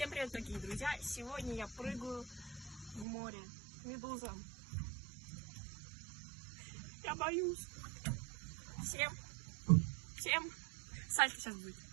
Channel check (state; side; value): drops out; left; at 3.1 s